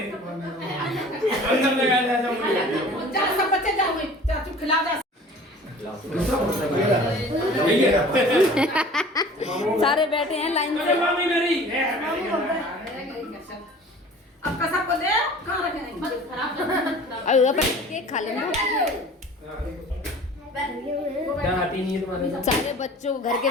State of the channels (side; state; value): both; normal; correlation 0.45